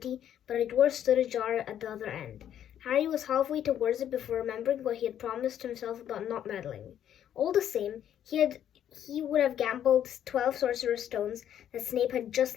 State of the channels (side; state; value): right; quieter; 10.3 dB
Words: but a door stood ajar at the other end. Harry was halfway towards it before remembering what he had promised himself about not meddling. All the same, he would have gambled 12 Sorcerer stones that Snape had just